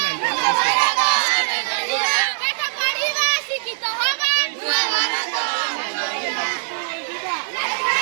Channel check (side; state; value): left; silent; digital silence